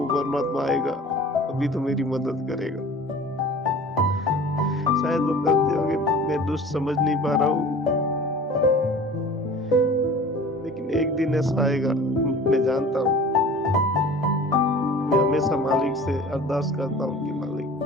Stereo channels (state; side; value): normal; both; correlation 0.42